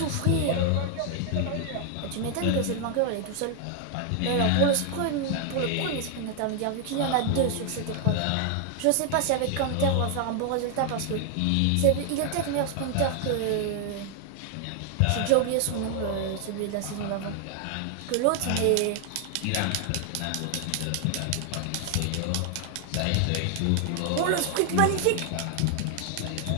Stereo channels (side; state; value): both; different; correlation 0.00